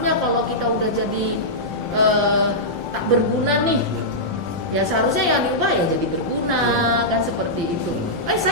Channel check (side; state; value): both; normal; correlation -0.11